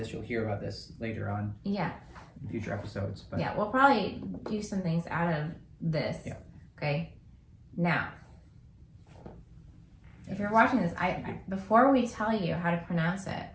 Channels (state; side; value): identical; both; correlation 1.00